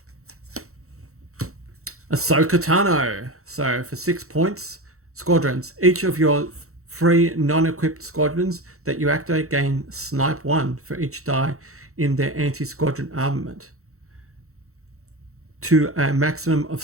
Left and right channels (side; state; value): left; late; 0.64 ms